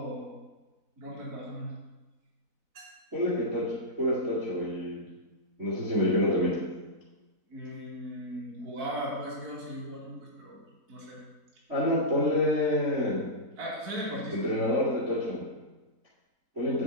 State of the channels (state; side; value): late; left; 4.0 ms